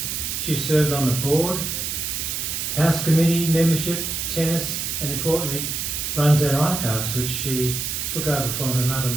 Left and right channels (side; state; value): right; noise; hiss, 3 dB below the sound